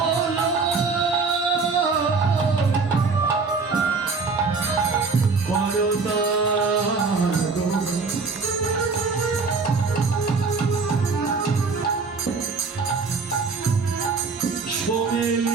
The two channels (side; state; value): left; quieter; 4.5 dB